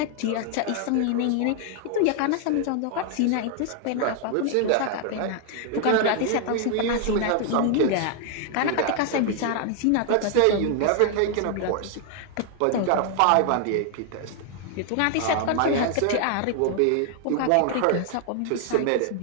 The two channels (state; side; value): different; both; correlation 0.00